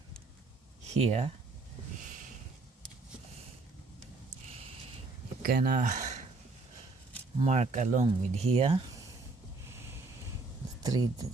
here. You can mark along with here the thread that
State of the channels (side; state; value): left; quieter; 3.6 dB